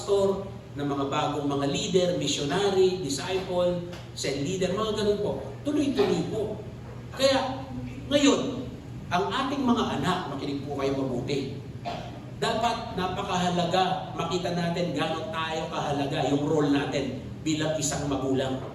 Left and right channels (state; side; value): identical; both; correlation 1.00